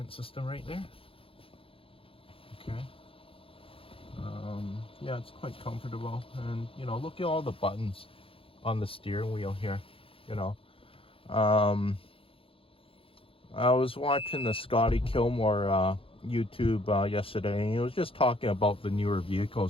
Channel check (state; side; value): late; right; 0.27 ms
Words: system right there. Okay. Yeah, it's quite comfortable, and look at all the buttons on the steering wheel here. I was watching the Scotty Kilmore YouTube yesterday, and he was just talking about the newer